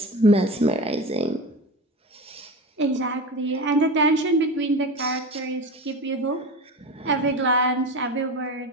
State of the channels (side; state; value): both; normal; correlation 0.27